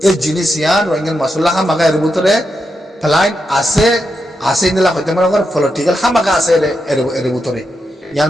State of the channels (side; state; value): both; normal; correlation 0.85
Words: এই জিনিস ইয়ান রোহিঙ্গার মশলা হামাকা এর ভিতরে ফ্লাইট আছে নিলা হইতে মনে কর পলিটিক্যাল হামাকা আছে এর ভিতরে ইয়ান